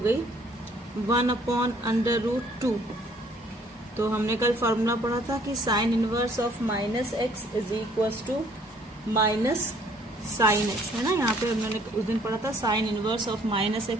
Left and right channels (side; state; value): both; normal; correlation 0.60